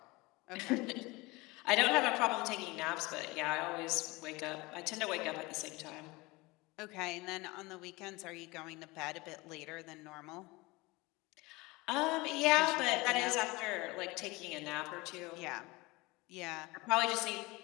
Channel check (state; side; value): quieter; right; 23.0 dB